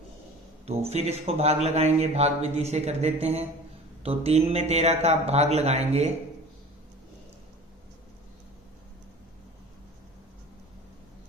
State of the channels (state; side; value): normal; both; correlation 0.40